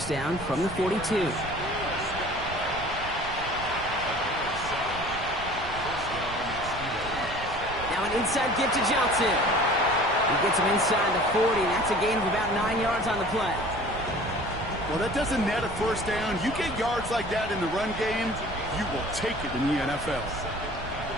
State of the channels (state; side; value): noise; right; rumble, 12 dB below the sound